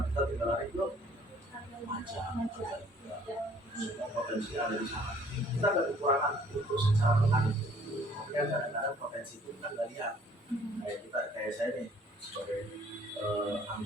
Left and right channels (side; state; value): both; normal; correlation 0.58